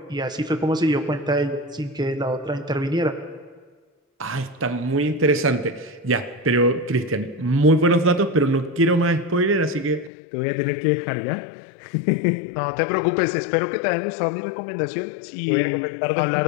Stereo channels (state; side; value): drops out; right; at 10.1 s